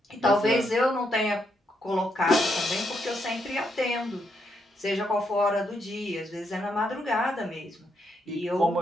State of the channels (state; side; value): normal; both; correlation 0.78